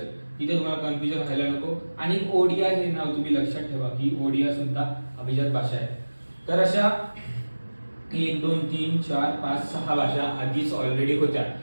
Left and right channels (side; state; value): both; inverted; correlation -1.00